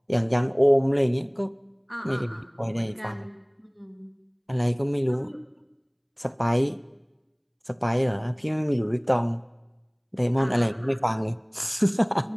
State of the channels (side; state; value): both; identical; correlation 1.00